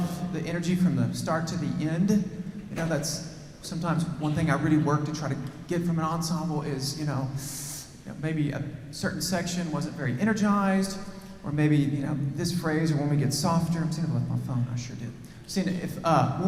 the energy from the start to the end. You know, that's sometimes one thing I really work to try to get from an ensemble is, maybe a certain section wasn't very energized, or maybe, this phrase, or when we get softer. I'm seeing it with my phone, I sure did. Seeing if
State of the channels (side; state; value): both; identical; correlation 1.00